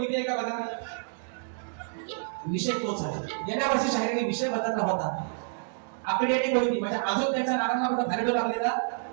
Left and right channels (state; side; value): silent; left; digital silence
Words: आहे का? बघा, विषय तोच आहे. गेल्या वर्षी शाहिराने विषय बदलला होता. आकडी आणि कोणती म्हणजे अजून त्याच्या नारांना कुठं फायदा लागलेला